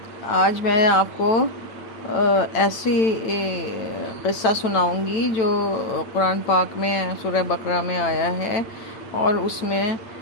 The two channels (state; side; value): late; right; 9.0 ms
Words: آج میں آپ کو ایسی قصہ سناؤں گی جو قرآن پاک میں سورہ بقرہ میں آیا ہے، اور اس میں